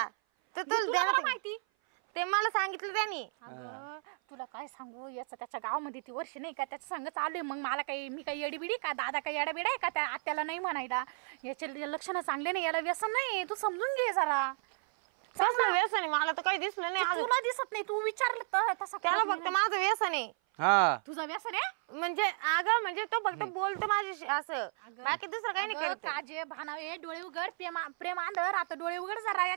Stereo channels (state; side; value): silent; left; 56 dB below the other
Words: तर तुला तुला बरं ध्यानात माहिती. ते मला सांगितलं त्यांनी. अगं तुला काय सांगू, याचं त्याच्या गावामध्ये ती वर्ष नाही का त्याच्या संग चालू आहे. मग मला काही, मी काही येडीबिडी का, दादा काही येडाबिडा आहे का त्या आत्याला नाही म्हणायला? याचे लक्षणं चांगले नाही, याला व्यसन नाही. तू समजून घे जरा. कसलं व्यसन आहे? मला तर काही दिसलं नाही अजून. तुला दिसत नाही, तू विचारलं तसं त्याला करत फक्त नाही. माझं व्यसन आहे. हा तुझं व्यसन आहे? म्हणजे अगं म्हणजे तो फक्त बोलतो माझ्याशी असं, बाकी दुसरं काही नाही अगं, करत. काजे भानावे डोळे उघड, प्रेम आंधळ. आता डोळे उघड जरा,